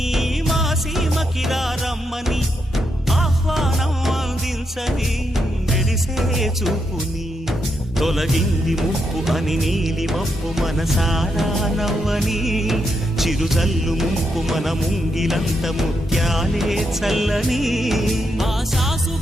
మా సీమకిరా రమ్మని ఆహ్వానం అందించని మెరిసే చూపుని తొలగింది ముప్పు అని నీలి మప్పు మనసారా నవ్వని చిరుజల్లు ముంపు మన ముంగిలంత ముత్యాలే చల్లని ఆశా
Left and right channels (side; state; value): both; normal; correlation 0.82